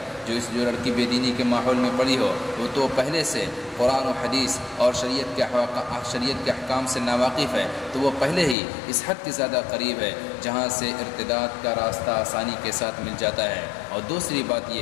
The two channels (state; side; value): drops out; right; at 8.6 s